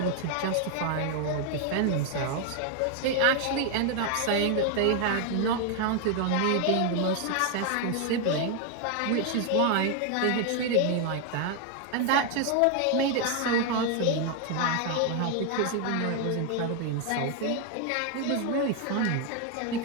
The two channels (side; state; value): both; different; correlation 0.00